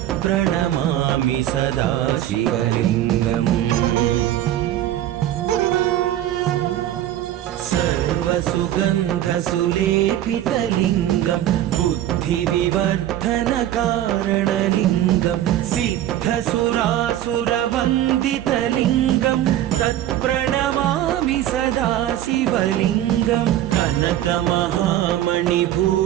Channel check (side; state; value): left; quieter; 12.5 dB